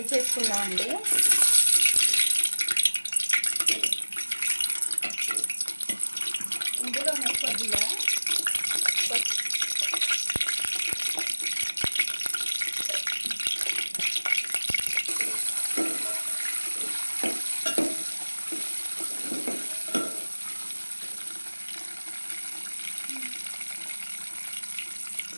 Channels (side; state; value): both; inverted; correlation -1.00